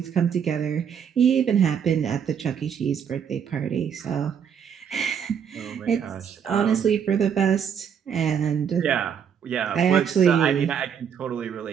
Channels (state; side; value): quieter; left; 7.8 dB